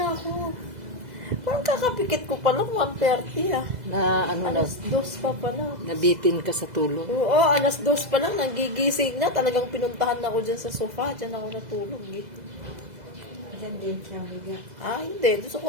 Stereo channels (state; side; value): late; left; 2.0 ms